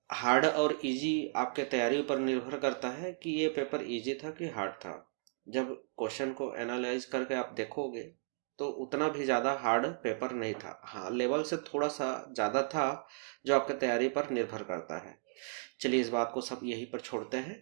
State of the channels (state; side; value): silent; left; digital silence